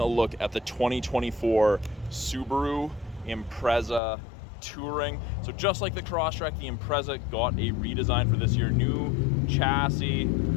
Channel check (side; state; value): right; drops out; at 4.0 s